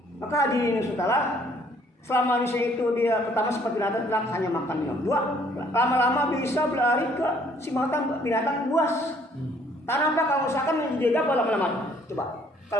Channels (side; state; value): both; normal; correlation 0.62